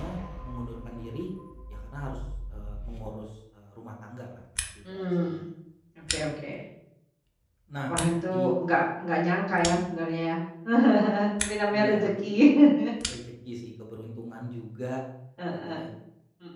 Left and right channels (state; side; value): identical; both; correlation 1.00